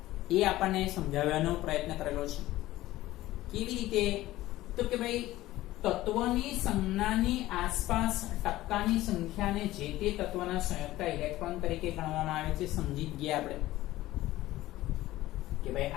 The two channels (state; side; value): quieter; right; 16.3 dB